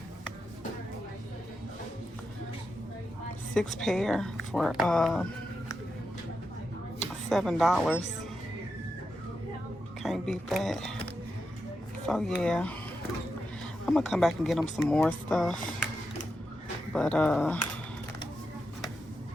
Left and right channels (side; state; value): both; normal; correlation 0.87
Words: 6 pair for $7. Can't beat that. So yeah, I'm gonna come back and get him some more stuff. But yeah,